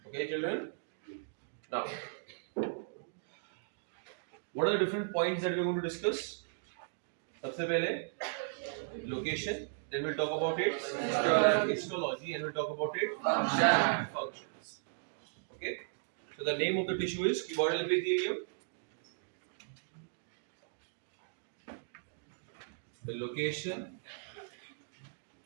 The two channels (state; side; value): silent; left; digital silence